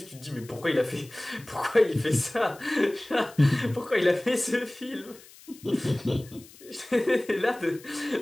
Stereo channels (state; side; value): noise; left; hiss, 22 dB below the sound